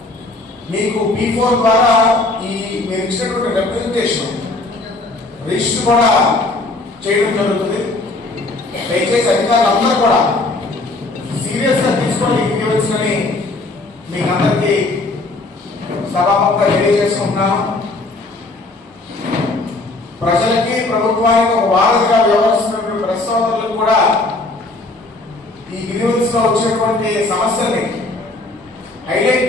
మీకు P4 ద్వారా ఈ మీరు ఇచ్చినటువంటి రిప్రజెంటేషన్ రిజిస్టర్ కూడా చేయడం జరుగుతుంది. దయచేసి అధికారులందరూ కూడా సీరియస్ గా తీసుకొని ఇవ్వవలసిందని మీకు అందరికీ సభాముఖంగా తెలియజేసుకుంటున్నాను. ప్రజలకి ప్రభుత్వానికి ఒక వారధిగా వ్యవహరిస్తున్నటువంటి ప్రెస్ సోదరులకు కూడా ఈ గ్రీవెన్స్ లో వచ్చేటువంటి సమస్యల్ని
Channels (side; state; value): right; quieter; 3.1 dB